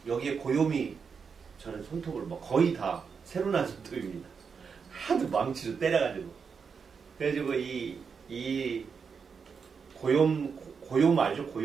여기에 고염이 저는 손톱을 뭐 거의 다 새로 난 손톱입니다. 하도 망치로 때려가지고. 그래가지고 이 고염 알죠?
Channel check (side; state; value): left; quieter; 5.9 dB